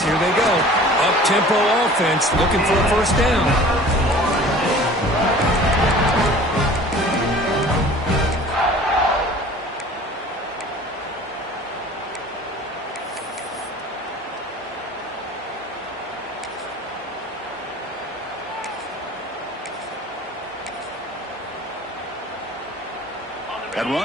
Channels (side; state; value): both; normal; correlation 0.45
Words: here they go. Up-tempo offense looking for a 1st down. That